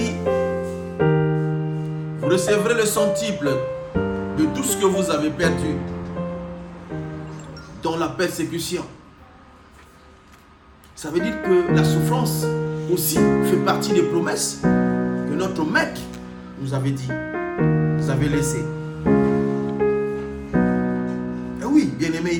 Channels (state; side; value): identical; both; correlation 1.00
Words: vous recevrez le centuple de tout ce que vous avez perdu dans la persécution. Ça veut dire que la souffrance aussi fait partie des promesses que notre maître nous avait dit, nous avait laissé. Et oui, bien-aimé,